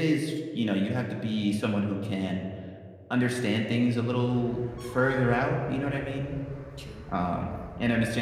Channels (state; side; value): identical; both; correlation 1.00